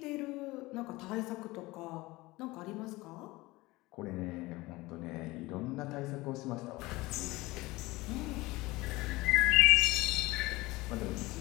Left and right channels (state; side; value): quieter; right; 20.8 dB